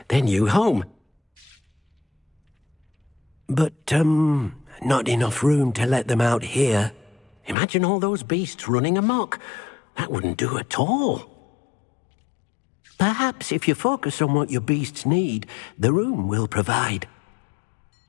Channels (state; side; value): drops out; right; at 7.6 s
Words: their new home. But, not enough room to let them out here. Imagine all those beasts running amok. That wouldn't do at all. Perhaps if you focus on what your beasts need, the room will provide.